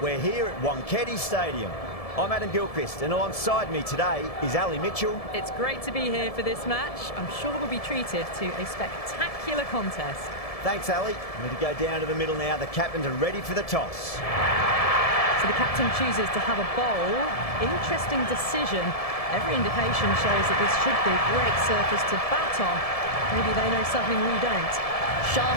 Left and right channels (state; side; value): late; right; 1.7 ms